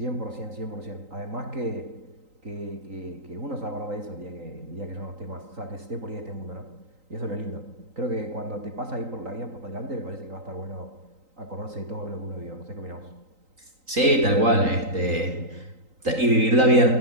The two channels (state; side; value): late; left; 3.9 ms